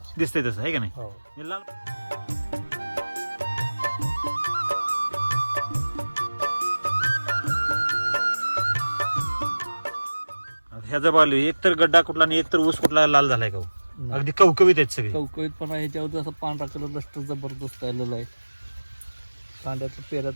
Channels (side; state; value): both; inverted; correlation -1.00